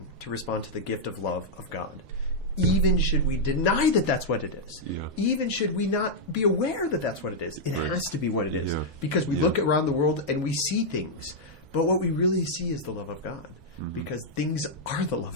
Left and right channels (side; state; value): both; normal; correlation -0.05